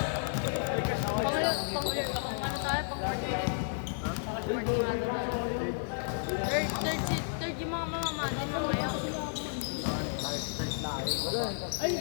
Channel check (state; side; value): silent; right; digital silence